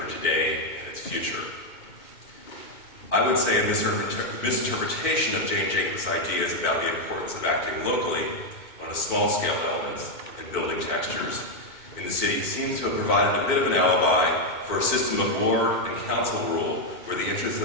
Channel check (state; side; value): late; right; 2.2 ms